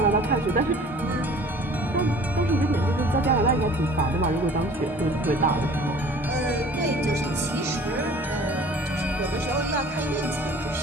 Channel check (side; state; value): both; normal; correlation 0.48